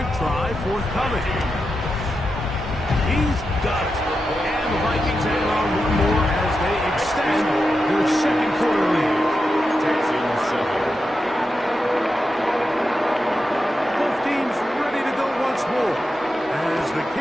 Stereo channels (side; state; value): both; normal; correlation 0.89